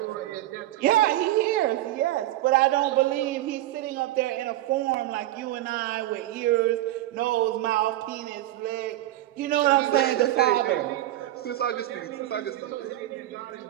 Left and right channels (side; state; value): left; quieter; 14.9 dB